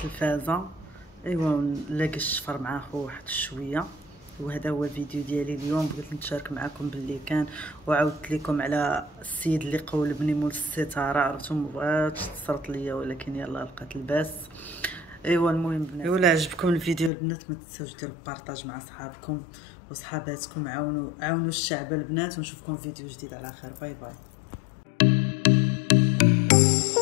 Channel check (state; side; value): drops out; right; at 17.1 s